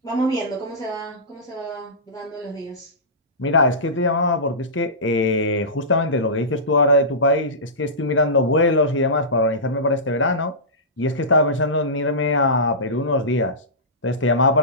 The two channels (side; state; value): both; normal; correlation -0.19